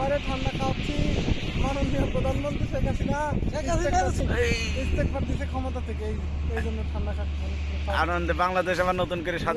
ঠান্ডা খাওয়াচ্ছি মাননীয় প্রধানমন্ত্রী শেখ হাসিনা ইস্তেগফার দিছে ক্ষমতা থেকে, এই জন্য ঠান্ডা খাচ্ছি। আনন্দে বাংলাদেশ আবার নতুন করে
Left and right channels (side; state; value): both; identical; correlation 1.00